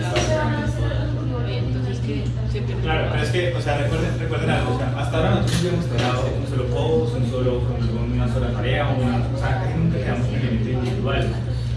es que, o sea, recuerden algo, o sea, hasta ahora nosotros hemos trabajado un solo post, una sola tarea, o sea, casi nunca quedamos un elemento individual.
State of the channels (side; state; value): both; identical; correlation 1.00